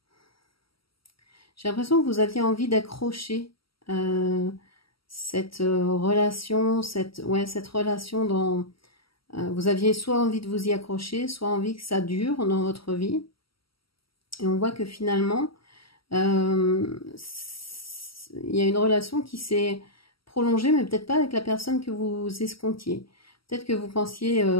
J'ai l'impression que vous aviez envie d'accrocher cette relation, cette relation dans... vous aviez soit envie de vous y accrocher, soit envie que ça dure dans votre vie. Et on voit que finalement, il y a une relation qui s'est prolongée, mais peut-être pas avec la personne que vous escomptiez. Peut-être que vous pensiez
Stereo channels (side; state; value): right; late; 0.75 ms